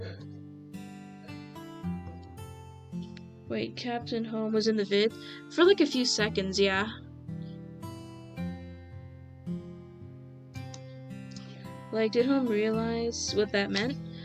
Wait, Captain Home was in the vid? For like a few seconds, yeah. Like, did Home realize what that meant?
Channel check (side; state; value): both; identical; correlation 1.00